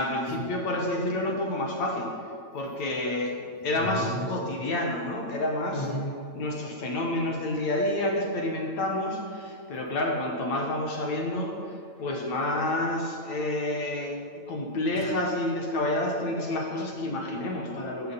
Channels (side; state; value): right; late; 8.9 ms